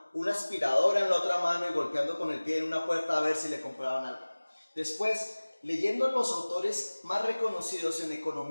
una aspiradora en la otra mano y golpeando con el pie en una puerta a ver si le compraban algo. Después, leyendo los autores más reconocidos en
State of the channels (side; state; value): both; inverted; correlation -1.00